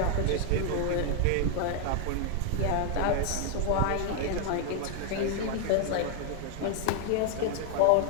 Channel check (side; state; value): both; different; correlation 0.00